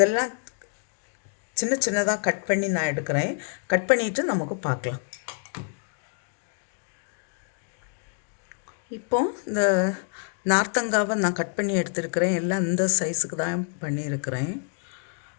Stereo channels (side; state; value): right; silent; 60 dB below the other